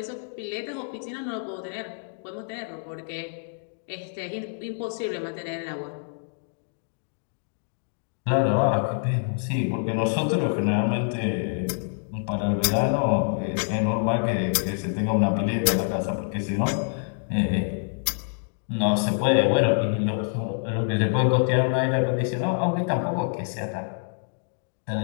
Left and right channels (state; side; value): silent; right; digital silence